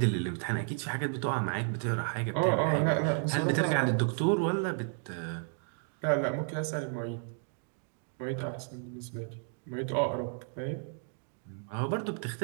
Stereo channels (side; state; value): left; silent; 55 dB below the other